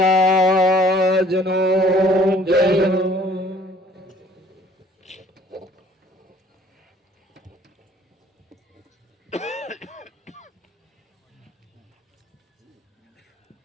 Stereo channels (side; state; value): both; normal; correlation 0.57